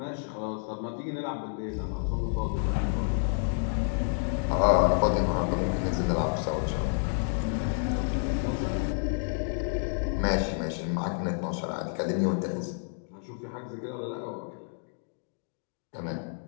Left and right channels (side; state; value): right; silent; 58 dB below the other